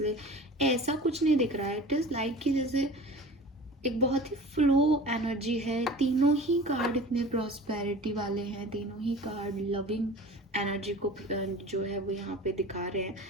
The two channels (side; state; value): both; normal; correlation 0.39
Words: ऐसा कुछ नहीं दिख रहा है। इट इज़ लाइक कि जैसे एक बहुत ही फ्लो एनर्जी है। तीनों ही कार्ड इतने प्रॉस्पेरिटी वाले हैं, तीनों ही कार्ड लविंग एनर्जी को जो है वो यहाँ पे दिखा रहे हैं।